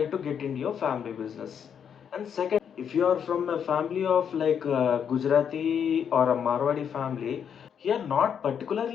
to get into your family business. And second, if you are from a family of like Gujarati or a Marwadi family, here not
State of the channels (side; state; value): right; quieter; 7.9 dB